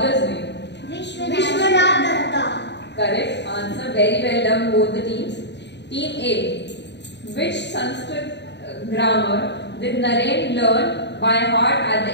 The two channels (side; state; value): right; late; 0.51 ms